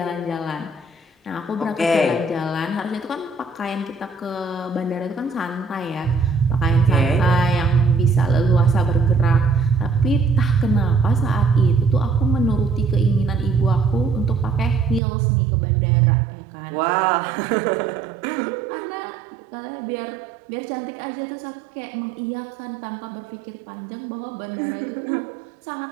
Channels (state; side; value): drops out; left; at 15.0 s